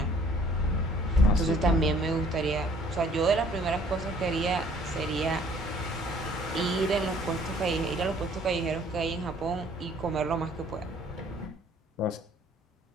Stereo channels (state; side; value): normal; both; correlation 0.58